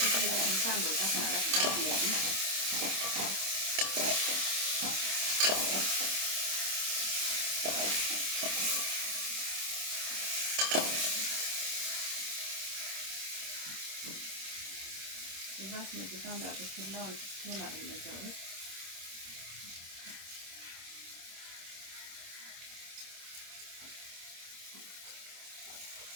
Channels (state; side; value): late; left; 26 ms